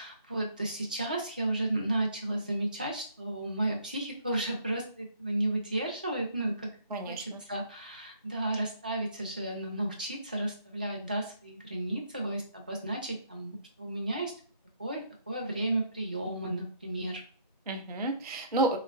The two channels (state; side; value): inverted; both; correlation -0.65